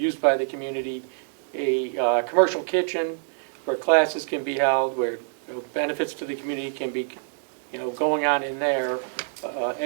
by the community, a commercial kitchen where classes can be held, where benefits to the community can be, going on in there,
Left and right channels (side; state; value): left; silent; 61 dB below the other